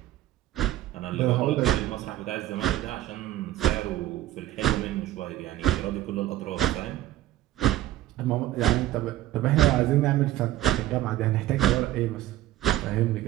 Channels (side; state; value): left; quieter; 14.6 dB